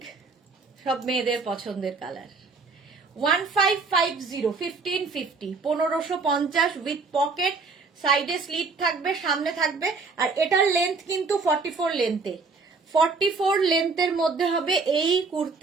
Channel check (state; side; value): quieter; left; 4.3 dB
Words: সব মেয়েদের পছন্দের কালার। 1550, 1550, 1550 উইথ পকেট, সাইডে স্লিট থাকবে, সামনে থাকবে। আর এটার লেন্থ কিন্তু 44 লেন্থে, 44 লেন্থের মধ্যে হবে এই